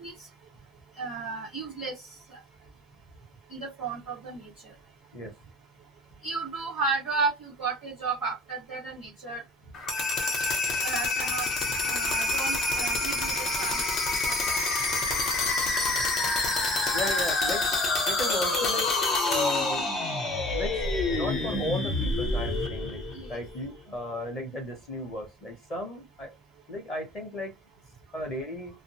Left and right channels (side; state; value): both; normal; correlation 0.48